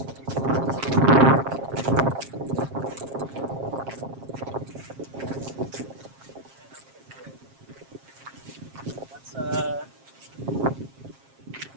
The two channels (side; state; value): left; late; 7.4 ms